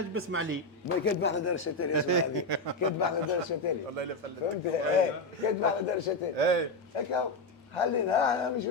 بسمع لي ما كتب احنا دار الشتالي اسمع هذه كتب احنا دار الشتالي والله الا فلت فهمت؟ ايه كتب احنا دار الشتالي ايه هكا خلينا انا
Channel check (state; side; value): quieter; right; 3.1 dB